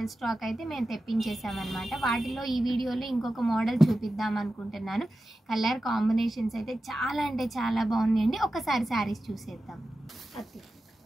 స్టాక్ అయితే మేము తెప్పించేసామన్నమాట. వాటిలో ఈ వీడియోలో ఇంకొక మోడల్ చూపిద్దాం అనుకుంటున్నాను. కలర్ కాంబినేషన్స్ అయితే చాలా అంటే చాలా బాగున్నాయండి. ఒకసారి శారీస్ చూసేద్దాం.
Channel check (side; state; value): both; normal; correlation 0.93